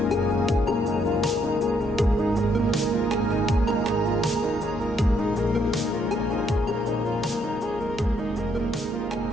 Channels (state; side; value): normal; both; correlation 0.72